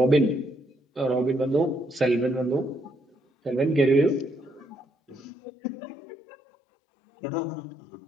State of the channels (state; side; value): drops out; right; at 5.2 s